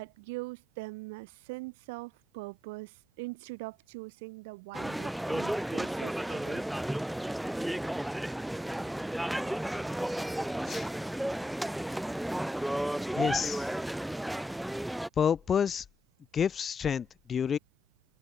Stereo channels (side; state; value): both; normal; correlation 0.85